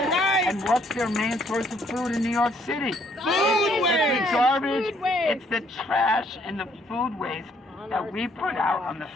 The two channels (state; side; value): normal; both; correlation 0.67